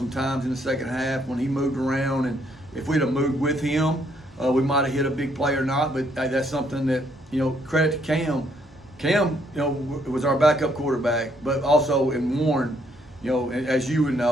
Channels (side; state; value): both; normal; correlation 0.70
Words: in the second half when he moved around, and if we'd have moved with him, we might have hit a big play or not. But that's something that credit to Cam. Cam, was our backup quarterback, but also in Warren, as you would